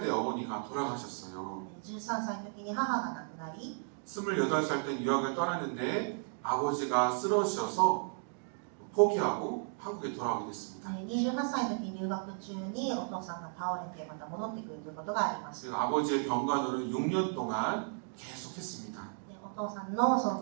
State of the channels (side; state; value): left; silent; 55 dB below the other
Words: 때 어머니가 돌아가셨어요. 13歳の時に母が亡くなり、 28살 때 유학을 떠났는데 아버지가 쓰러지셔서 포기하고 한국에 돌아오게 됐습니다. 28歳の時に留学中にお父さんが倒れてまた戻ってくるということがありました。 아버지의 병간호를 6년 동안 계속했습니다. おお父さんのその